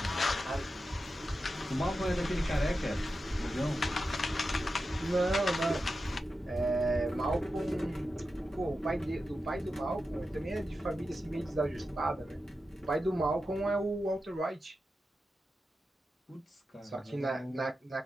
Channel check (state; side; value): normal; both; correlation 0.91